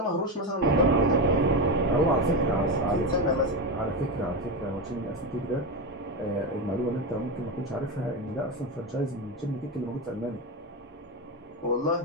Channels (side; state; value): both; normal; correlation 0.15